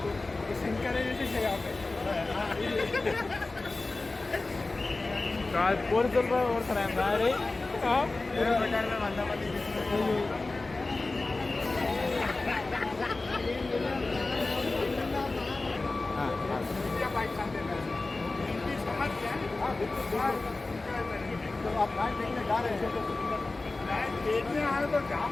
పోలీసులు ఓడతారా मैं देखने आया तो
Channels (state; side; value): quieter; right; 3.3 dB